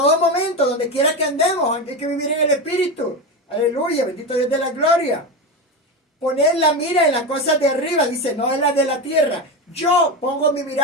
donde quiera que andemos, hay que vivir en el Espíritu. Aleluya, bendito Dios de la gloria. Poner la mira en las cosas de arriba, dice, no en las de la tierra. Yo pongo mi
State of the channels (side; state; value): both; normal; correlation 0.18